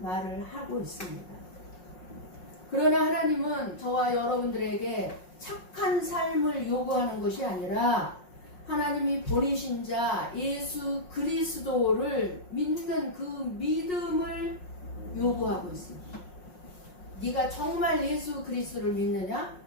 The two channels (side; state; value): right; late; 5.5 ms